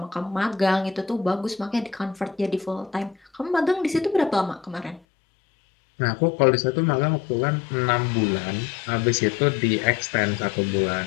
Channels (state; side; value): drops out; right; at 5.0 s